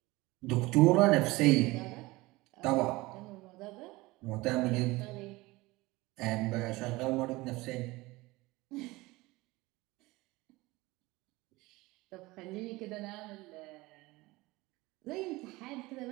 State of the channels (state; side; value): quieter; left; 21.1 dB